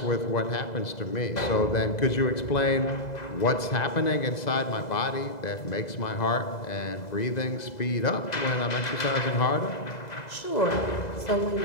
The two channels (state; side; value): late; right; 2.0 ms